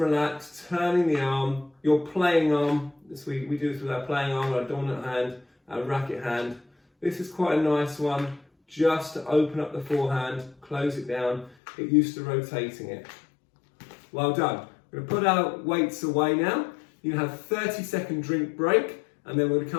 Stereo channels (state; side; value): drops out; right; at 11.6 s